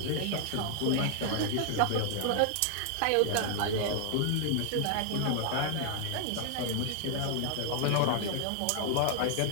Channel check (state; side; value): different; both; correlation 0.00